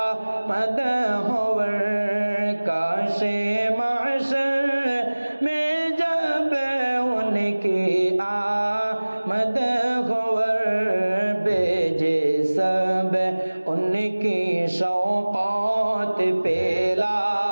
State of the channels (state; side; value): inverted; both; correlation -1.00